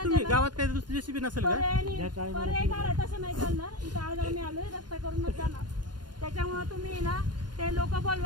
तुम्ही गावात काही दुसरी जेसीबी नसेल का पर्याय काढाय तसं नाही चालणार इथं आज आम्ही आलोय रस्ता करूनच जाणार त्याच्यामुळे तुम्ही ना ते लोक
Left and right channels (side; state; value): left; late; 0.71 ms